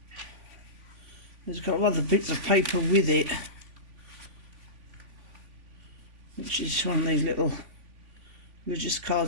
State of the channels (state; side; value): late; left; 3.5 ms